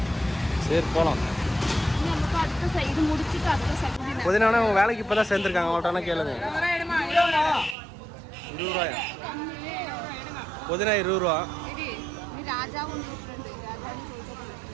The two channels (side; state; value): left; drops out; at 7.8 s